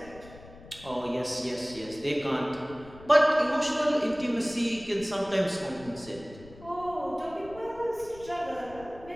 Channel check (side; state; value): left; noise; rumble, 19 dB below the sound